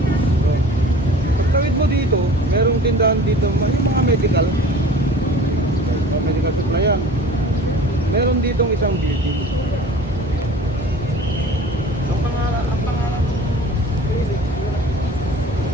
Pagtawid mo dito, merong tindahan dito, yung mga medical. Medical supply yan. Meron ditong isang beauty. Ang pangalan ng clinic,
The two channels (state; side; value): normal; both; correlation 0.43